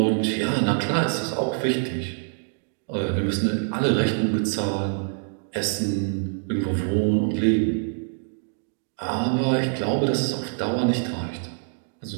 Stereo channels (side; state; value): left; silent; digital silence